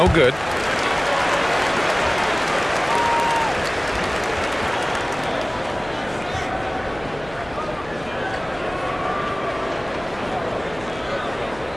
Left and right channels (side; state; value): left; noise; hum, 18 dB below the sound